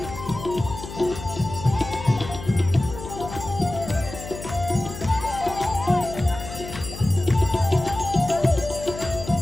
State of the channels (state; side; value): noise; left; hum, 11 dB below the sound